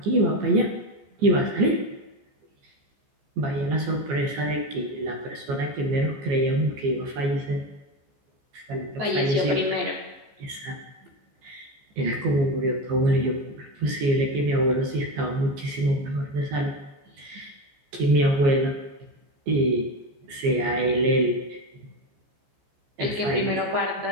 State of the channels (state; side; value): late; left; 14 ms